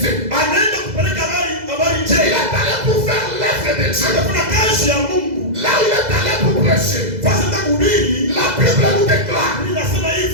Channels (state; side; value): late; left; 2.0 ms